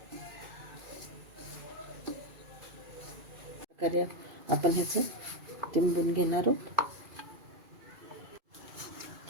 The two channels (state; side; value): late; left; 2.4 ms